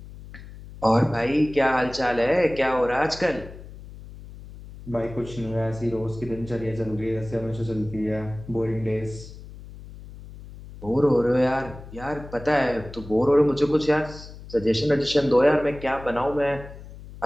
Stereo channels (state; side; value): noise; left; hum, 16 dB below the sound